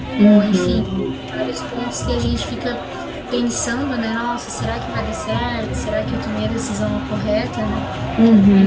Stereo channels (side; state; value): both; identical; correlation 1.00